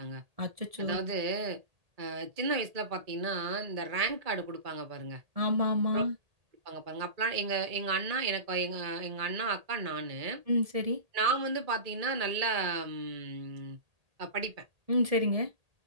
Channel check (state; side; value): late; left; 1.8 ms